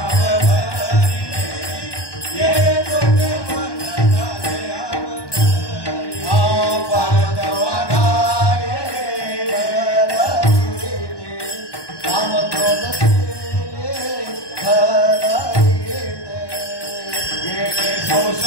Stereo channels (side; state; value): right; late; 1.2 ms